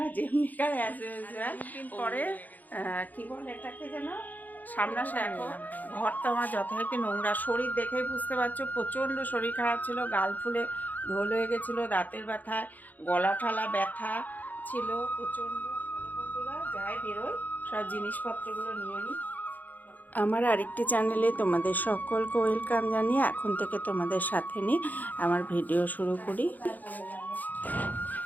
যেমনিকার as usual পরে কি বলে এটাকে যেন সামনাসামনি দেখো। ঘর তো আমার যথারীতি নোংরা, শরীর দেখেই বুঝতে পারছো প্রচণ্ড শরীর খারাপ ছিল, গাল ফুলে ঢোল হয়ে গেছিলো, দাঁতের ব্যথায় গলা ঠালা ব্যথা ছিল প্রচণ্ড। বন্ধুরা যাই বেরোয় সব জিনিসপত্রগুলো নিয়ে নিই। আমার আরেকটি চ্যানেলে তোমাদের সকলকে ওয়েলকাম জানিয়ে এখন থেকে তোমাদের সাথে নিয়ে আমার ভিডিও শুরু করি।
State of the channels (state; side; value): late; right; 0.082 ms